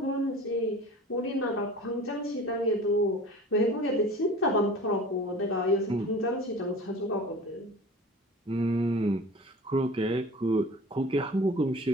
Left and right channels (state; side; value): normal; both; correlation 0.40